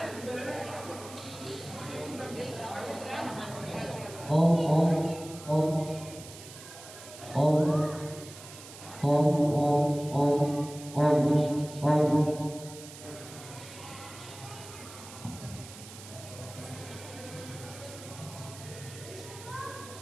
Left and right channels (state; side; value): noise; right; hiss, 16 dB below the sound